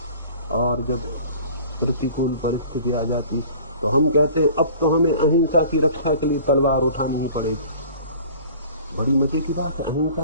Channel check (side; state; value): both; inverted; correlation -0.46